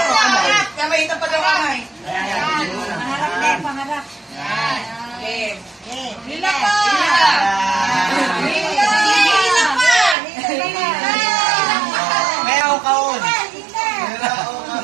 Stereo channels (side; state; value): left; drops out; at 10.2 s